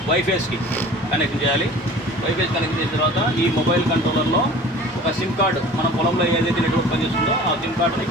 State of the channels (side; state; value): both; normal; correlation 0.43